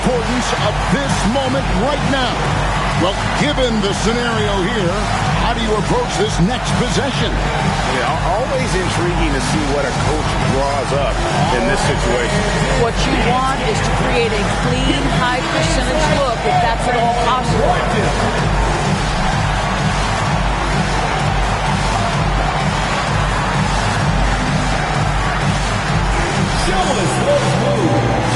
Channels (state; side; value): identical; both; correlation 1.00